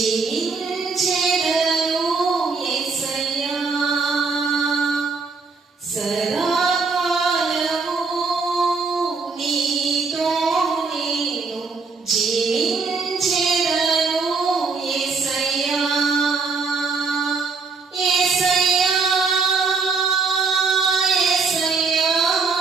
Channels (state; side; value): quieter; left; 4.6 dB